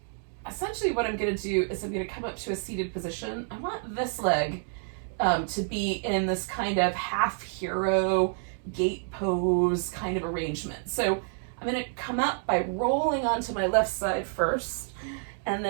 essentially what I'm going to do is I'm going to come up to a seated position. I want this leg to be in this kind of half hero gate pose kind of arrangement. So I'm going to come up by rolling onto my left side first, and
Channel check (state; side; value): silent; left; 59 dB below the other